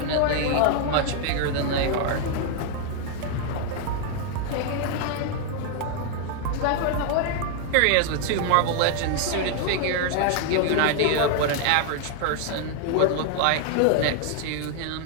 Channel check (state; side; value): different; both; correlation 0.00